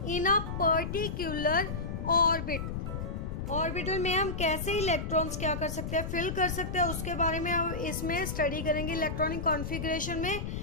in a particular orbit. Orbital में हम कैसे इलेक्ट्रॉन्स क्या कर सकते हैं, फिल कर सकते हैं, उसके बारे में हम इसमें स्टडी करेंगे इलेक्ट्रॉनिक कॉन्फ़िगरेशन में.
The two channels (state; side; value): noise; left; rumble, 4 dB below the sound